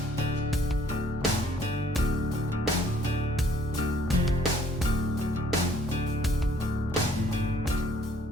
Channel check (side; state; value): both; normal; correlation 0.61